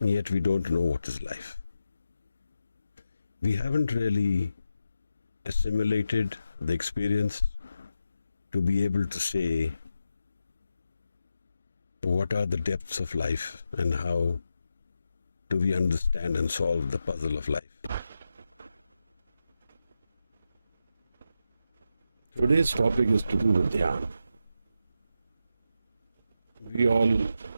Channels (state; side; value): inverted; both; correlation -0.88